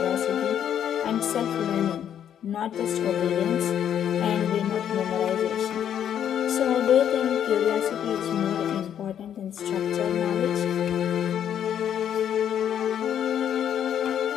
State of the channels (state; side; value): quieter; right; 9.5 dB